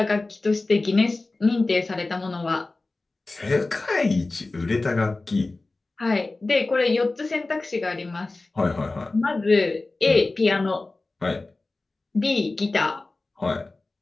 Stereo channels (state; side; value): quieter; right; 3.3 dB